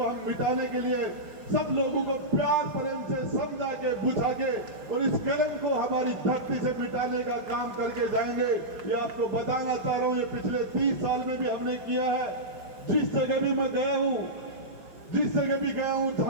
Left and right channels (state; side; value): late; left; 5.3 ms